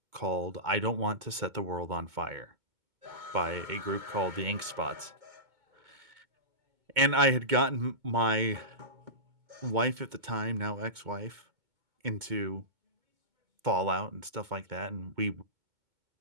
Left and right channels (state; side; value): late; left; 2.2 ms